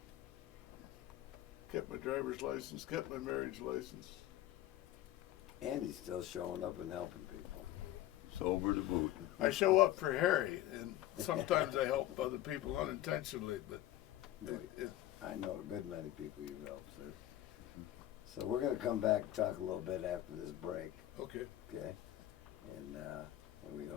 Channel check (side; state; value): right; quieter; 13.8 dB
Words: Kept my driver's license. Kept my marriage license. And he's still showing up and helping people. Sober to boot. I show up for Harry, and sometimes I help other people unintentionally, but I know a good many people you've helped, sir. So we're going to come back and talk a little bit after this break, okay. okay? And we